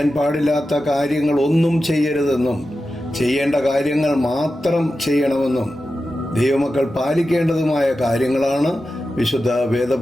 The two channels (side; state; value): both; normal; correlation 0.92